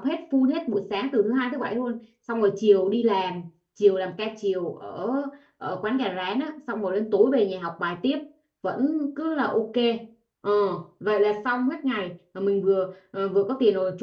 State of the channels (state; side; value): identical; both; correlation 1.00